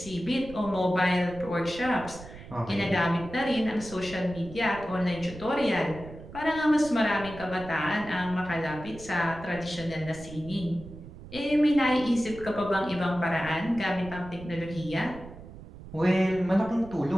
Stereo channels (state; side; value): noise; right; rumble, 15 dB below the sound